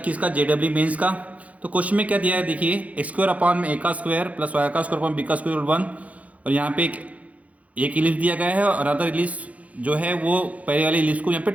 का जेडब्ल्यू मेंस का। तो क्वेश्चन में क्या दिया है देखिए, एक्स स्क्वायर अपॉन में ए का स्क्वायर प्लस वाई का स्क्वायर अपॉन बी का स्क्वायर 1। और यहाँ पे एक इलिप्स दिया गया है और अदर इलिप्स जो है वो पहले वाले इलिप्स को यहाँ पे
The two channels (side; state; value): left; late; 0.068 ms